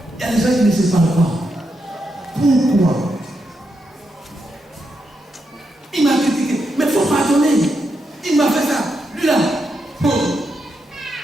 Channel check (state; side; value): normal; both; correlation 0.84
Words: Il y a des gens qui ne se parlent pas. Pourquoi? Il m'a critiqué. Mais il faut pardonner. Il m'a fait ça. Lui là.